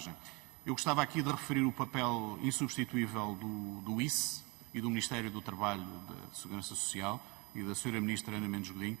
Eu gostava aqui de referir o papel insubstituível do ICE e do Ministério do Trabalho, da Segurança Social e da Sra. Ministra Ana Mendes Godinho,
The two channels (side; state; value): left; quieter; 27.3 dB